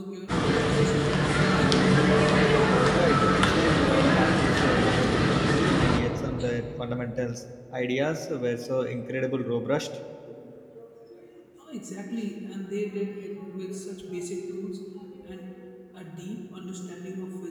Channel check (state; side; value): identical; both; correlation 1.00